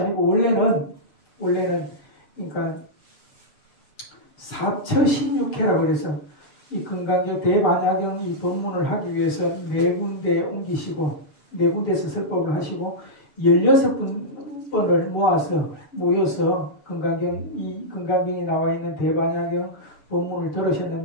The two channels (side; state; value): right; late; 7.1 ms